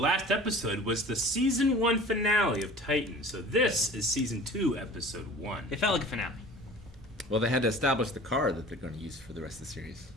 episode was the Season 1 finale of Titan, so this is Season 2, Episode 1. It felt like a finale. Well, they had to establish the car that they're going to use for the rest of the series,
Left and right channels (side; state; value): both; normal; correlation 0.43